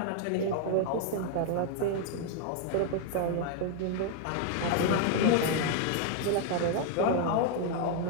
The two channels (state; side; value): different; both; correlation 0.00